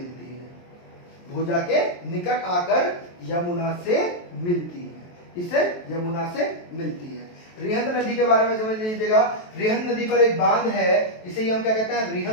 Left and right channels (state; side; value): late; right; 23 ms